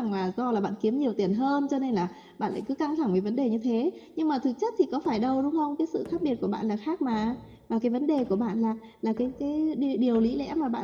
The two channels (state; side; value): identical; both; correlation 1.00